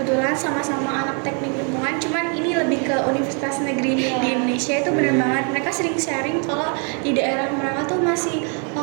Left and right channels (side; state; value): left; quieter; 38.8 dB